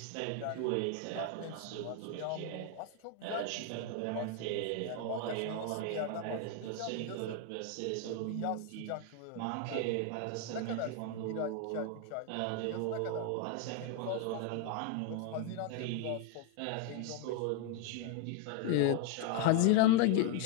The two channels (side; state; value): both; different; correlation 0.01